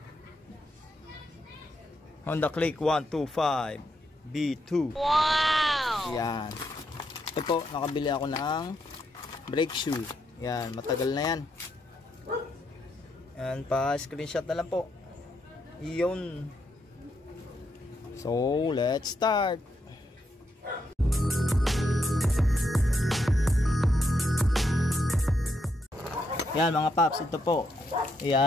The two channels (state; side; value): normal; both; correlation 0.79